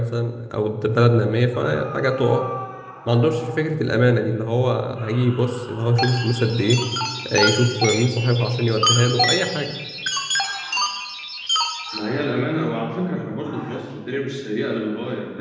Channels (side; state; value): both; identical; correlation 1.00